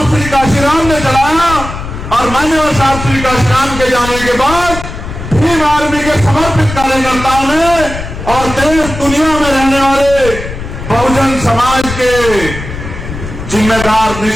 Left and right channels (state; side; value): noise; left; rumble, 9 dB below the sound